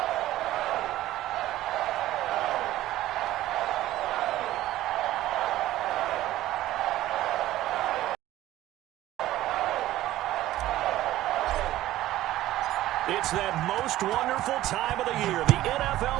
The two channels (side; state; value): left; quieter; 15.0 dB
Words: It's that most wonderful time of the year, the